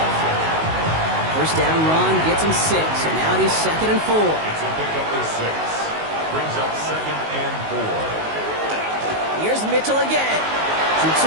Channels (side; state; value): left; late; 19 ms